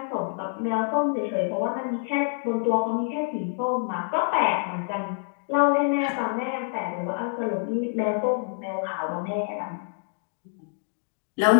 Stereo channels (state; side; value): silent; right; digital silence